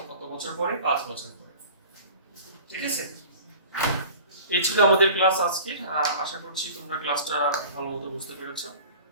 কত বছর পরে? 5 বছর পরে। ঠিক আছে, এই ছিল আমাদের ক্লাস আজকে। আশা করছি তোমরা ক্লাসটা ভালো মতো বুঝতে পেরেছো।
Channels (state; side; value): inverted; both; correlation -0.42